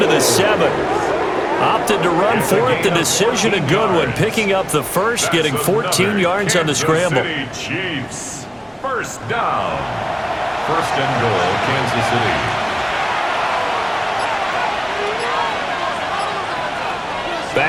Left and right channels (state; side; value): identical; both; correlation 1.00